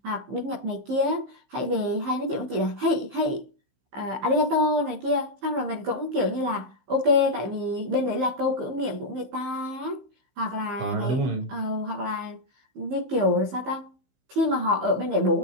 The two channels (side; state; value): left; late; 15 ms